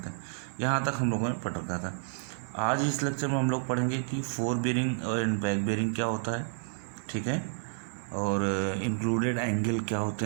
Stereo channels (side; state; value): left; silent; 58 dB below the other